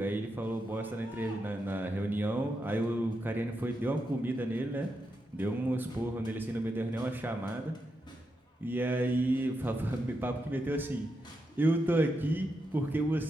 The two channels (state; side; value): normal; both; correlation 0.85